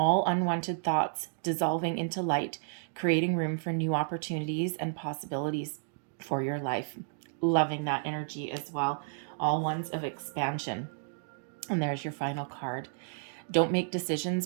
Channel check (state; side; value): silent; left; digital silence